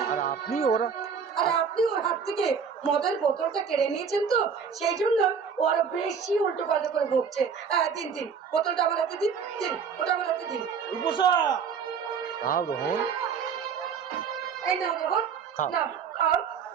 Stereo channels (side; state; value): left; quieter; 6.4 dB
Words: আর আপনি ওরা আর আপনি ওর হাত থেকে মদের বোতলটা কেড়ে নিয়েছেন তো সেই জন্য ও আরো বেশি উল্টো পাল্টা করে ভুগছে। দিন দিন বোতলটা আমার হাতে দিন, দিন ওটা আমার হাতে দিন। রূপসা, নাও রোহন। এই নাও রোহন, খাও। নাও খাও।